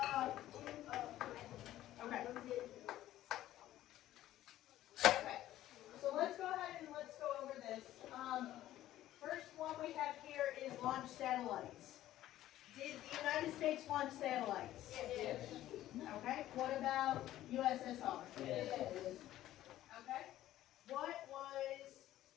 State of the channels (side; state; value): right; quieter; 13.9 dB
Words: Okay. Okay, so let's go ahead and let's go over this. First one we have here is launch satellites. Did the United States launch satellites? Yes. Okay, what about USSR? Yes. Okay, what